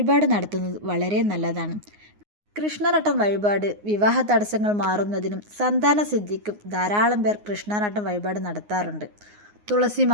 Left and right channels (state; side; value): late; left; 9.6 ms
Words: നടത്തുന്നത് വളരെ നല്ലതാണ്. കൃഷ്ണനട്ടം വഴിപാട് വിവാഹ തടസ്സങ്ങൾ മാറുന്നതിനും സന്താന സിദ്ധിക്കും ധാരാളം പേർ കൃഷ്ണനട്ടം വഴിപാട് നടത്താറുണ്ട്.